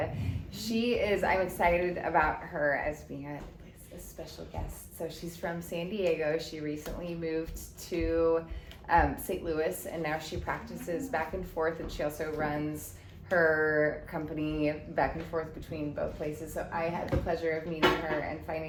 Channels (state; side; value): identical; both; correlation 1.00